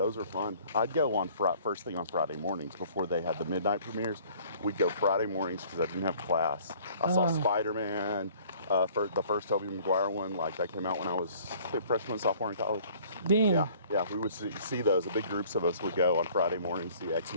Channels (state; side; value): inverted; both; correlation -0.54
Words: were fun. I'd go on first thing on Friday mornings before they had the midnight premieres. We'd go Friday mornings because I didn't have class. I saw Spider-Man, the first Tobey Maguire one. Like, that came out when I was freshman, sophomore in college. Damn. Yeah. We would see those. The big groups of us would go on Friday mornings, see